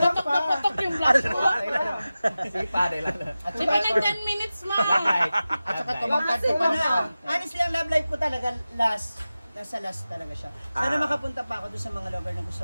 pa. Sige, pare lang. At Di saka, ba nag 10 minutes ma? at saka tumangkad ko pa na. Honestly, ang love life ko talaga nasa last talaga siya. Sana makapunta pa ako doon sa mga lugar na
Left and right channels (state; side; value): inverted; both; correlation -0.95